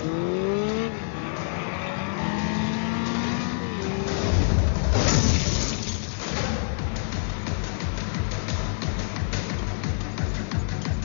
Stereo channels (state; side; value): silent; right; digital silence